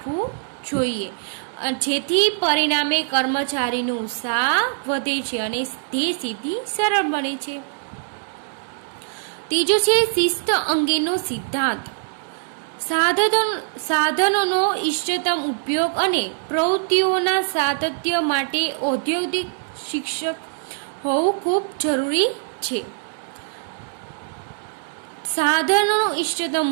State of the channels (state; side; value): silent; left; digital silence